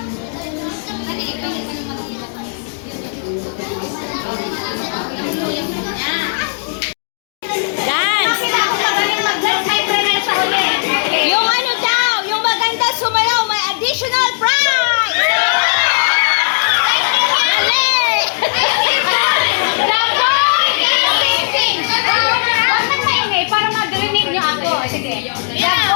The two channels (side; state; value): right; silent; digital silence